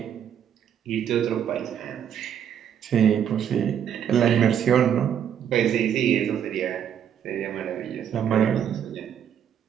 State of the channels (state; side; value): quieter; left; 9.0 dB